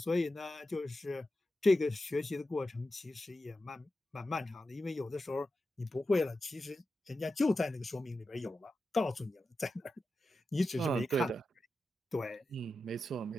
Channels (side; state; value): both; normal; correlation 0.91